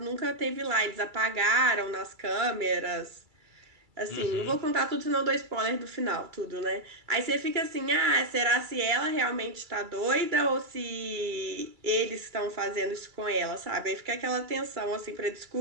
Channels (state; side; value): late; left; 2.3 ms